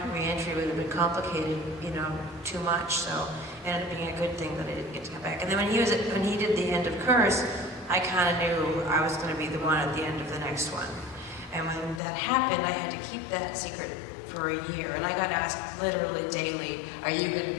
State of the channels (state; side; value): drops out; right; at 12.0 s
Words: re-entry would have been complicated, too much. So it ended up being a good thing that I didn't get to come back. And then when he did the end of Curse, I kind of knew I was going to be the one at the end of the next one. And when that happened, I had to keep that secret for a year, and I got asked literally daily, "Are you going